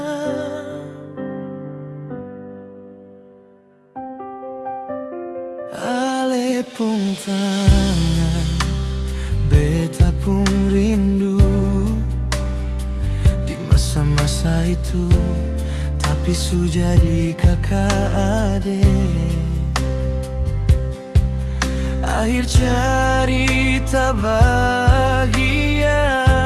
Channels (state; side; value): identical; both; correlation 1.00